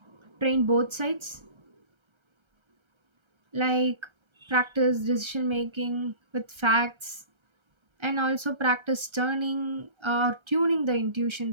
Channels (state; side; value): late; left; 1.3 ms